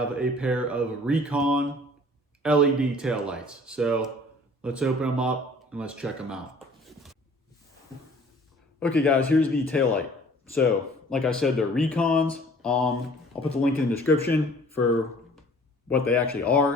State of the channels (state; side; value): normal; both; correlation 0.51